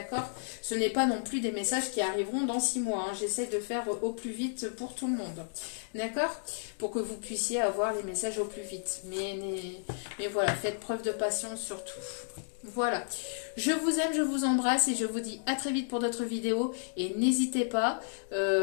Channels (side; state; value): right; silent; digital silence